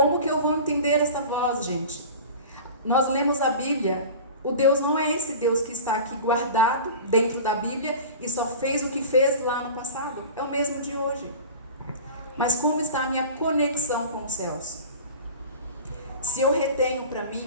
que eu vou entender essa voz, gente? Nós lemos a Bíblia. O Deus não é esse Deus que está aqui guardado dentro da Bíblia e só fez o que fez lá no passado. É o mesmo de hoje. Mas como está a minha conexão com os céus? Se eu retenho para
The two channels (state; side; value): inverted; both; correlation -0.36